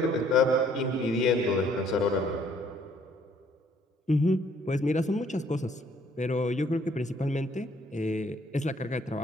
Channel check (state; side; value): normal; both; correlation 0.63